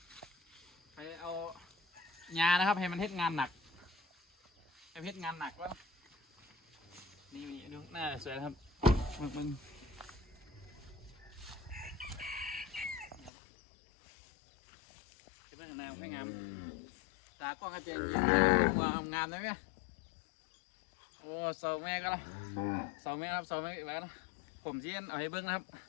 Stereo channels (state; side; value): drops out; right; at 13.3 s